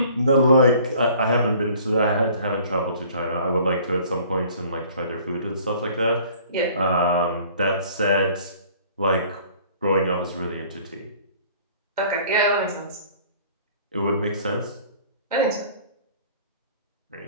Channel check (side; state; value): both; inverted; correlation -0.52